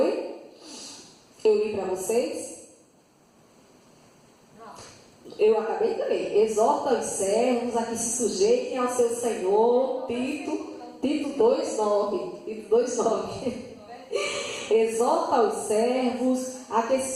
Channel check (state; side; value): identical; both; correlation 1.00